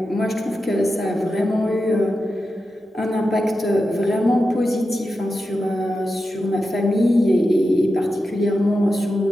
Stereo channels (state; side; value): normal; both; correlation 0.90